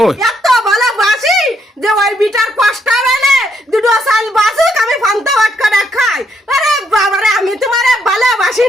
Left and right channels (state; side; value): normal; both; correlation 0.74